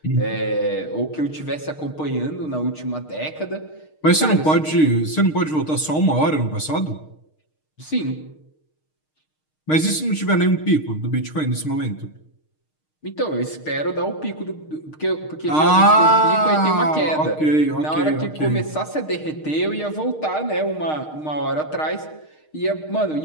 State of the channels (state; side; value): late; right; 6.5 ms